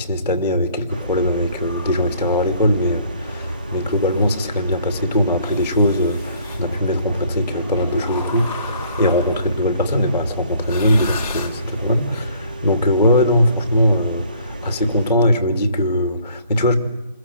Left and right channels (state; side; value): inverted; both; correlation -0.58